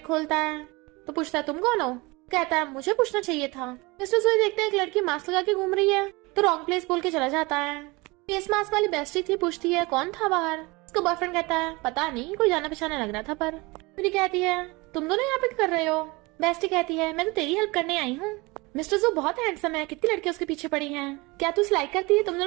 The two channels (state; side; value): quieter; left; 24.5 dB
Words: खोलता है। तो पूछता है तुम कौन हो? कहता है मुझे पूछना चाहिए था। मिस्टर जुए देखते हैं एक लड़की मास्क लगा के घूम रही है, तो रॉन्ग प्लेस बोल के चला जाता है। फेस मास्क वाली बेस्टी थी, पूछती है कौन था बाहर? उसका बॉयफ्रेंड कहता है पता नहीं, कोई जाना पहचाना लग रहा था। पर यूरी कहती है तुम दोनों यहाँ पे क्या कर रहे हो? बेस्टी कहती है मैं तो तेरी हेल्प करने आई हूँ। मिस्टर जू बहुत हैंडसम है, कितनी लड़कियां उसके पीछे पड़ी हैं, क्या तू उसे लाइक करती है? तुम